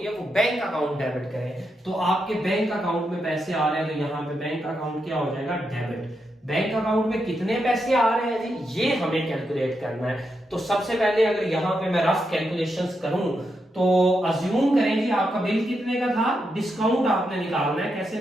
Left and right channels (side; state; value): both; normal; correlation 0.84